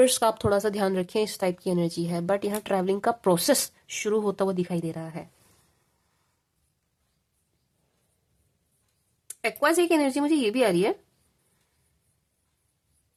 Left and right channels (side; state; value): both; identical; correlation 1.00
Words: का आप थोड़ा सा ध्यान रखें, इस टाइप की एनर्जी है। बट यहाँ ट्रैवलिंग का प्रोसेस शुरू होता हुआ दिखाई दे रहा है। एक्वास एक एनर्जी मुझे ये भी आ रही है